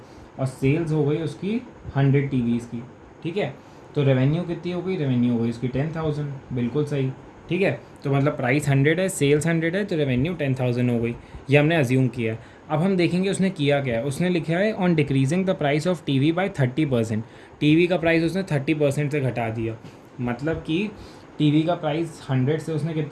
और सेल्स हो गई उसकी 100 टीवीज़ की, ठीक है। तो रेवेन्यू कितनी हो गई, रेवेन्यू हो गई उसकी 10,000, बिल्कुल सही, ठीक है। तो मतलब प्राइस 100 है, सेल्स 100 है, तो रेवेन्यू 10,000 हो गई, ये हमने अज्यूम किया है। अब हम देखेंगे उसने किया क्या है। उसने लिखा है on decreasing the price of TV by 30%। TV का प्राइस उसने 30% से घटा दिया, मतलब कि टीवी का प्राइस 100 से उसने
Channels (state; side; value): identical; both; correlation 1.00